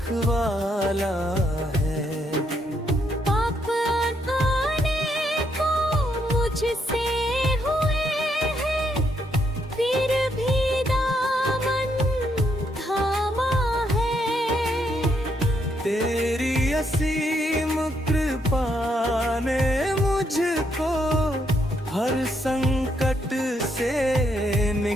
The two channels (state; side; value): normal; both; correlation 0.75